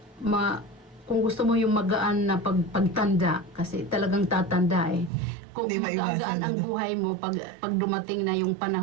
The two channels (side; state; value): left; drops out; at 5.1 s